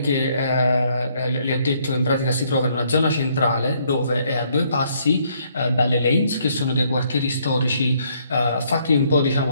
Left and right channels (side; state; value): both; inverted; correlation -0.68